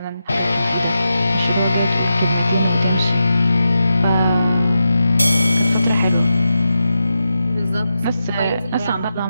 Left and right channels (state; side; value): inverted; both; correlation -0.89